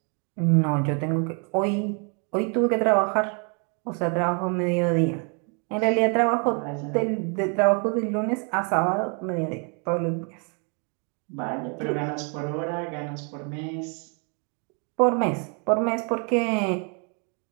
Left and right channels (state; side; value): quieter; left; 37.5 dB